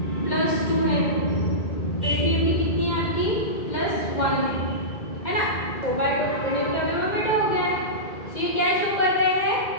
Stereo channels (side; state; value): right; late; 1.9 ms